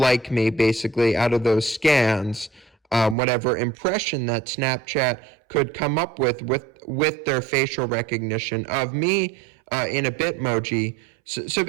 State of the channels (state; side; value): drops out; left; at 3.2 s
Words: me, basically, out of those scans, whatever impression that Snapchat could come up with their facial recognition of me in a Bitmoji. So